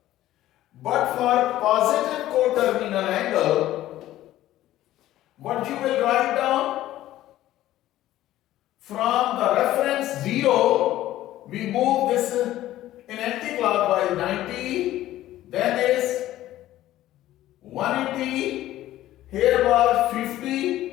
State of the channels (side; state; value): right; quieter; 14.3 dB